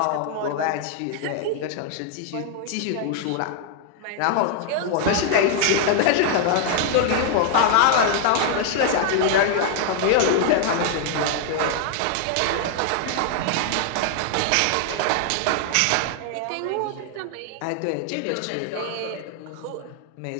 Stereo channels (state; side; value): different; both; correlation 0.00